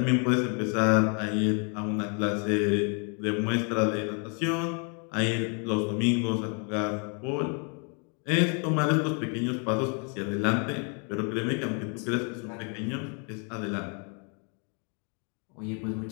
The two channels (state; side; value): quieter; right; 38.3 dB